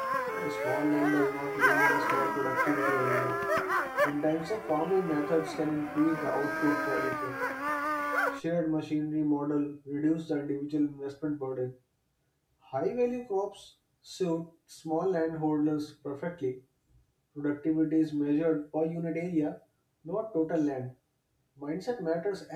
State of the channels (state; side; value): identical; both; correlation 1.00